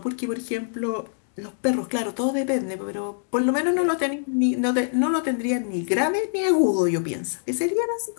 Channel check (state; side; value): silent; right; digital silence